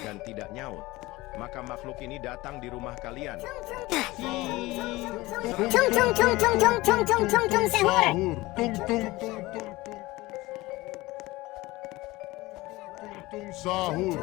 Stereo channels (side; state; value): right; quieter; 20.1 dB